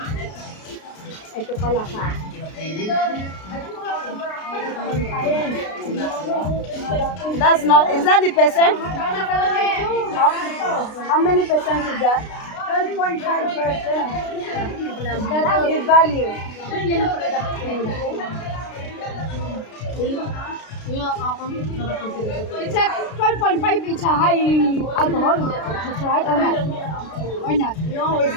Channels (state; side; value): late; right; 33 ms